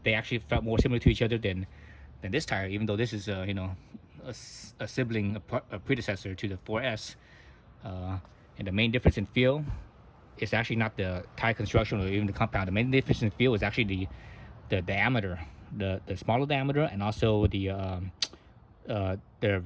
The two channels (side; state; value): both; identical; correlation 1.00